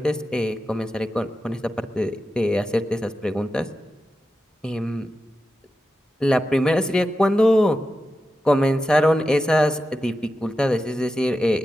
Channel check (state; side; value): normal; both; correlation 0.91